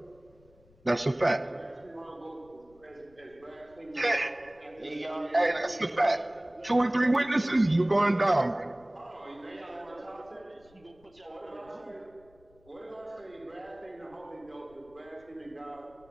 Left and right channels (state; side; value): noise; left; rumble, 29 dB below the sound